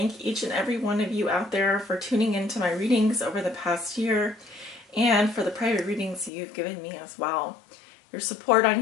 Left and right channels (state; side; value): drops out; right; at 6.3 s